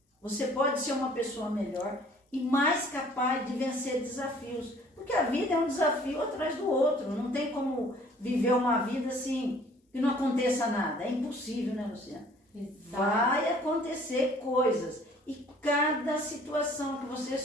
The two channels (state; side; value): normal; both; correlation 0.55